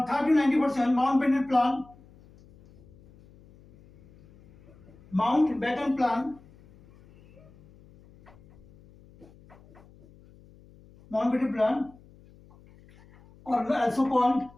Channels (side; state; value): left; noise; hum, 26 dB below the sound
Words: Mountbatten Plan, or